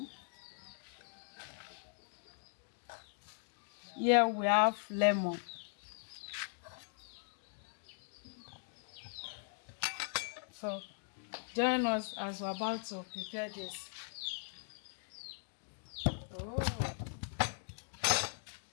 Here we have lemon. So join us as we're about to prepare this. Oh,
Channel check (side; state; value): right; silent; digital silence